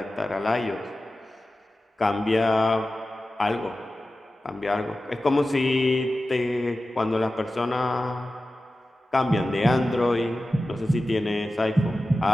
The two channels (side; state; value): both; normal; correlation 0.94